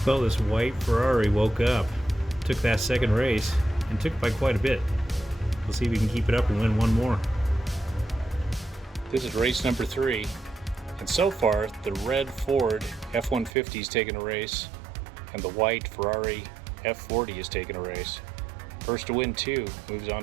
Well, this white Ferrari woke up, took that second race, and took it by quite a bit. We'll see if we can keep it up and win one more. This is race number 3, and so far the red Ford F-150 is taking a race, and the white Ferrari F-40 is taking a race. First to win 2 moves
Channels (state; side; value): drops out; left; at 13.5 s